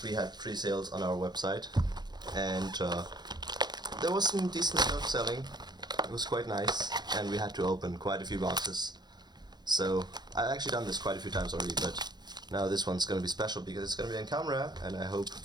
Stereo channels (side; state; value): left; late; 0.20 ms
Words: we had pre-sales on our website, and there was some decent stuff selling. It was quite nice, and we had to open quite a few boxes. So I've actually done this quite a few times already, but now this one's going to be special because it's going to be on camera, and I hope